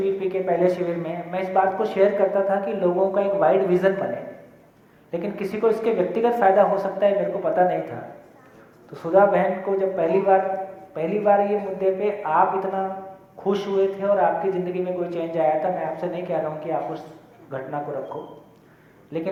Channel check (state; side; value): identical; both; correlation 1.00